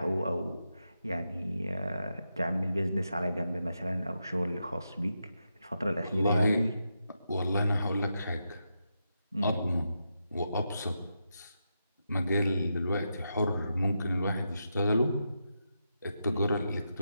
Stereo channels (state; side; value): inverted; both; correlation -0.86